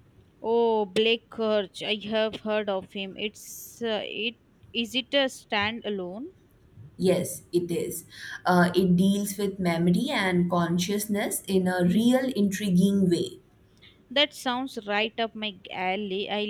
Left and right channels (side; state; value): both; identical; correlation 1.00